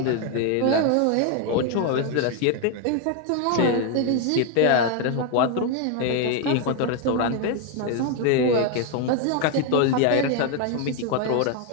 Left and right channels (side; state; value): both; different; correlation 0.01